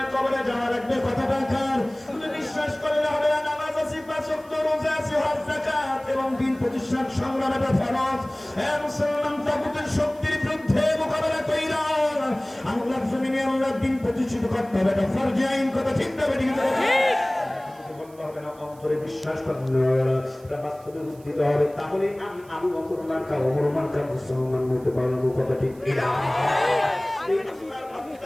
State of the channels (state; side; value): noise; right; hiss, 27 dB below the sound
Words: কবরে যাওয়া লাগবে, কথাটা কার? তুমি বিশ্বাস করলে হবে না, নামাজ আছে, পাঁচ ওয়াক্ত রোজা আছে, হজ যাকাত এবং দিন প্রতিষ্ঠার সংগ্রাম এটা ফরজ। মুসলমান তাগুতের শক্তির বিরুদ্ধে মোকাবেলা কইরা আল্লাহর জমিনে আল্লাহর দিন প্রতিষ্ঠিত করতে হবে, এটা ফরজ আইন, কথা ঠিক না ঠিক? হবে না, অন্তরে বিশ্বাস করতে হবে, এটা বাস্তবে উদ্দিত হবে, তাহলে আমি আবু বকর মার্কা ওমর মার্কা মুসলমান হতে পারবো, কথা ঠিক কিনা?